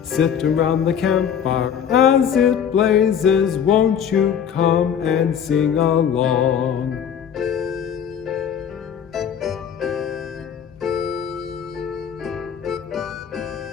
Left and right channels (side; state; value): right; quieter; 8.2 dB